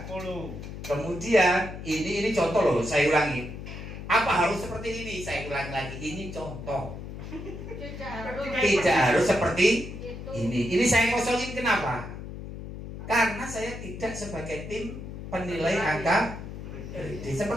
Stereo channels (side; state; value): left; noise; hum, 10 dB below the sound